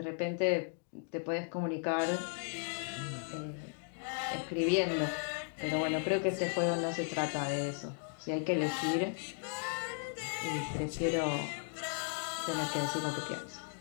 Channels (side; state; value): right; silent; 54 dB below the other